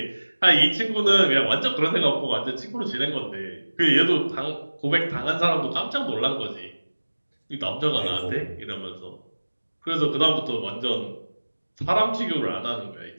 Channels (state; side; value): inverted; both; correlation -1.00